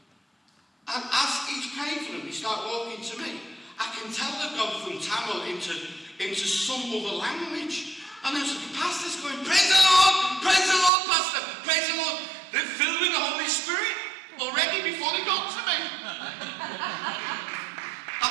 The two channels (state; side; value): drops out; left; at 10.9 s